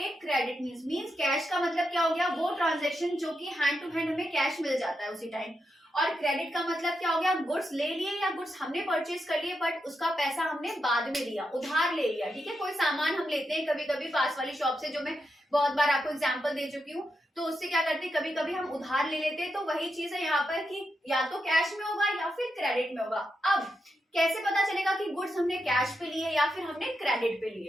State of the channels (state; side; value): normal; both; correlation 0.85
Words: क्रेडिट मीन्स कैश का मतलब क्या हो गया, वो ट्रांजैक्शन जो कि हैंड टू हैंड हमें कैश मिल जाता है उसी टाइम. और क्रेडिट का मतलब क्या हो गया, गुड्स ले लिए या गुड्स हमने परचेज कर लिए बट उसका पैसा हमने बाद में लिया, उधार ले लिया. ठीक है, कोई सामान हम लेते हैं कभी कभी पास वाली शॉप से, जो मैं बहुत बार आपको एग्जांपल दे चुकी हूँ, तो उससे क्या करते हैं, कभी कभी हम उधार ले लेते हैं. तो वही चीज है यहाँ पर कि या तो कैश में होगा या फिर क्रेडिट में होगा. अब कैसे पता चलेगा कि गुड्स हमने कैश पे लिए या फिर हमने क्रेडिट पे